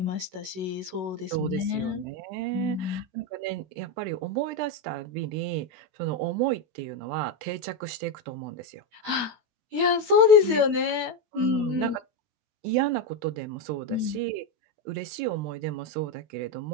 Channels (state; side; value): late; left; 16 ms